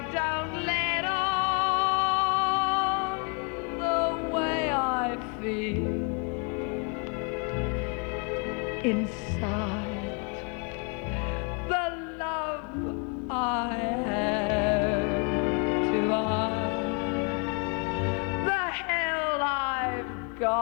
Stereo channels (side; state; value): right; quieter; 34.7 dB